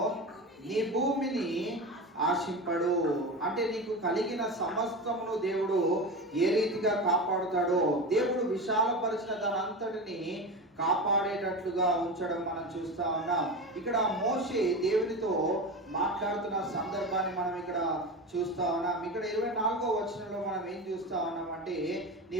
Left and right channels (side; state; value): both; normal; correlation 0.25